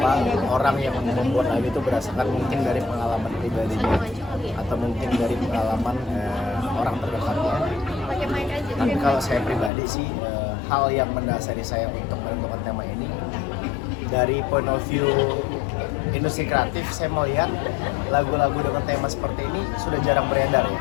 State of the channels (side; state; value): right; drops out; at 9.7 s